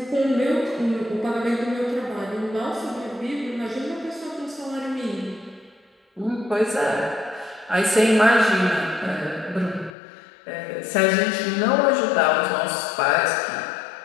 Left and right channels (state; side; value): drops out; right; at 10.0 s